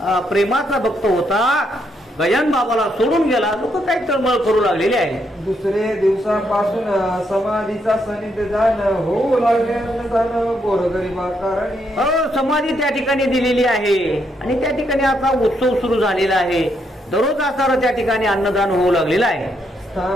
प्रेमाचा भक्त होता, गजानन बाबाला सोडून गेला. लोक काही तळमळ करू लागलेले आहे. दुसरे दिवसापासून समाधीचा सनिध जाणं होऊ लागले अन्नदान गोरगरिबा कारणी. समाधी त्या ठिकाणी दिलेली आहे आणि त्या ठिकाणी आता उत्सव सुरू झालेला आहे. दररोज असणारं त्या ठिकाणी अन्नदान होऊ लागलेलं आहे.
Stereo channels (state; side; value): normal; both; correlation 0.76